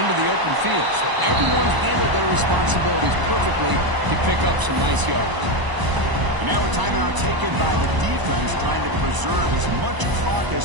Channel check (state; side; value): late; left; 1.0 ms